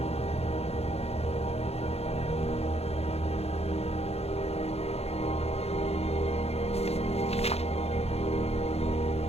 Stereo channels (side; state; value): right; late; 0.30 ms